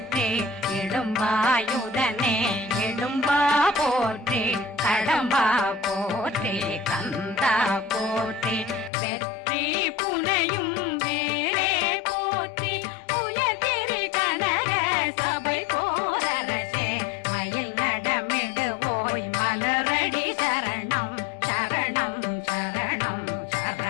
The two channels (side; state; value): right; drops out; at 8.9 s